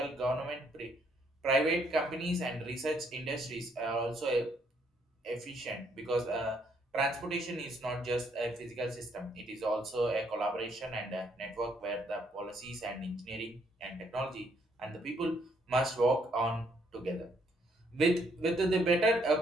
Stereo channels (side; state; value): both; normal; correlation 0.70